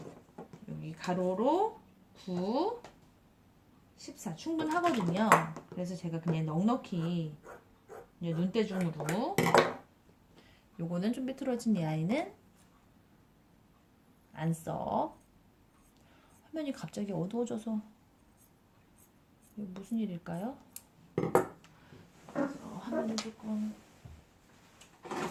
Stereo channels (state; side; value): identical; both; correlation 1.00